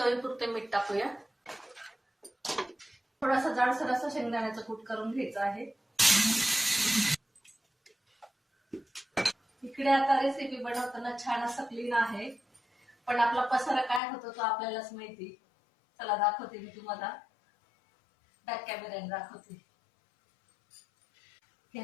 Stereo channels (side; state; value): right; drops out; at 14.0 s